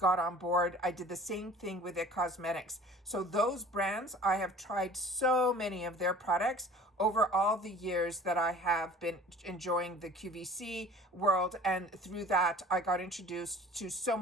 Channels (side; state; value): both; normal; correlation 0.46